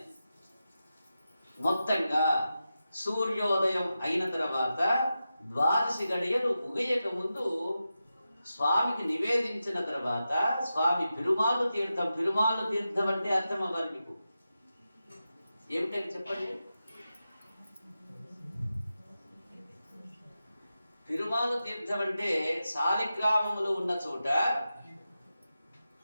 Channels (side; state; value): both; inverted; correlation -0.91